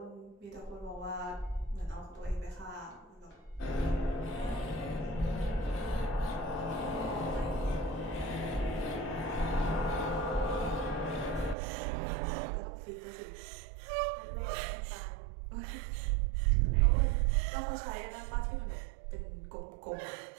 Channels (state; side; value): drops out; left; at 11.6 s